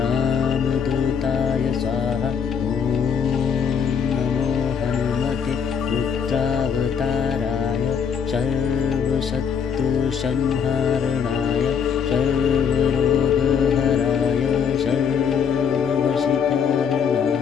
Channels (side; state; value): right; quieter; 7.0 dB